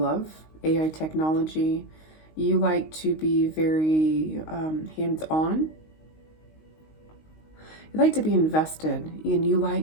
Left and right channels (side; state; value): right; late; 19 ms